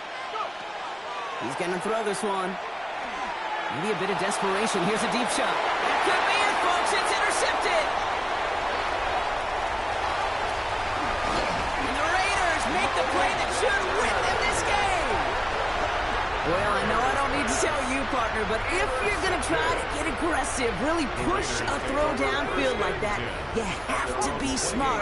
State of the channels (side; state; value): both; identical; correlation 1.00